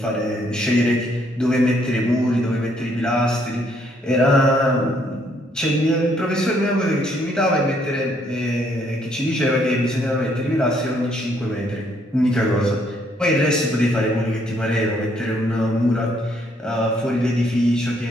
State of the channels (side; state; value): both; normal; correlation 0.69